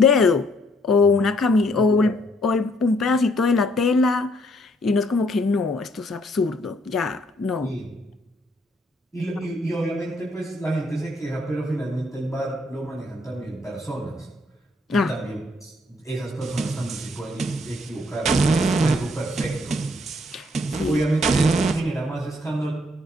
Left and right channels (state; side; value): normal; both; correlation 0.67